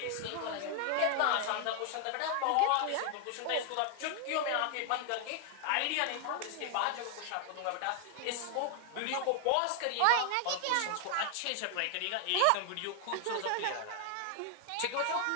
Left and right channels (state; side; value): different; both; correlation 0.00